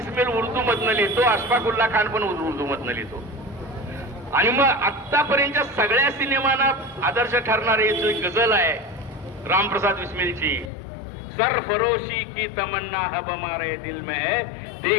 उर्दू मधनं लिहितो, अशफाकुल्ला खान पण उर्दू मधनं लिहितो. आणि मग आतापर्यंतच्या सगळ्या सिनेमांना आदर्श ठरणारी जो गझल आहे रामप्रसाद बिस्मिलची, सरफरोशी की तमन्ना हब हमारे दिल में है,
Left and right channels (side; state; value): right; drops out; at 10.7 s